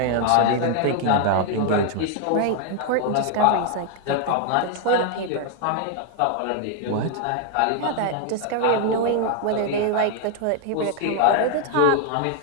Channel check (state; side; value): different; both; correlation 0.00